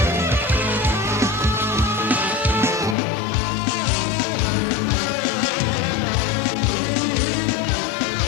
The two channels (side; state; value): right; drops out; at 3.0 s